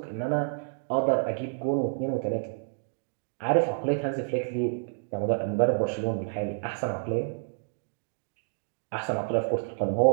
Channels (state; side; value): silent; left; digital silence